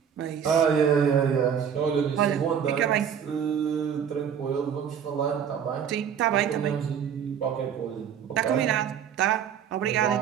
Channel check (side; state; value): left; quieter; 8.1 dB